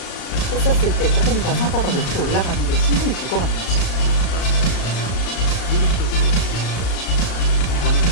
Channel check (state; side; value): late; right; 35 ms